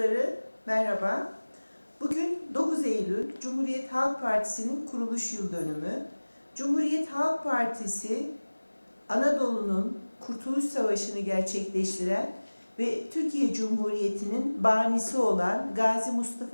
merhaba. Bugün 9 Eylül, Cumhuriyet Halk Partisi'nin kuruluş yıl dönümü. Cumhuriyet Halk Partisi, Anadolu'nun Kurtuluş Savaşı'nı gerçekleştiren ve Türkiye Cumhuriyeti'nin banisi olan Gazi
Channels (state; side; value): inverted; both; correlation -1.00